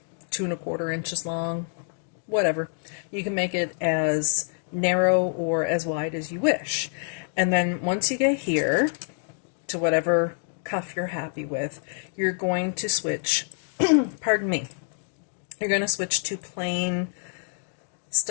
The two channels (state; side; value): silent; right; digital silence